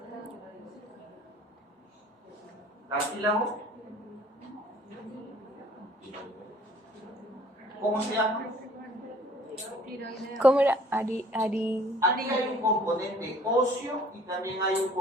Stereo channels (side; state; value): both; normal; correlation 0.54